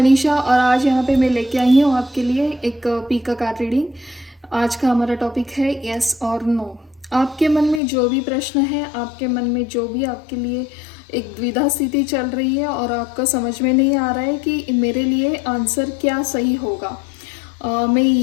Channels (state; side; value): drops out; right; at 7.8 s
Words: और आज यहाँ पे मैं लेके आई हूँ आपके लिए एक पीका कार्ड रीडिंग। आज का हमारा टॉपिक है यस और नो। आपके मन में जो भी प्रश्न है, आपके मन में जो भी आपके लिए एक द्विधा स्थिति चल रही है और आपको समझ में नहीं आ रहा है कि मेरे लिए आंसर क्या सही होगा,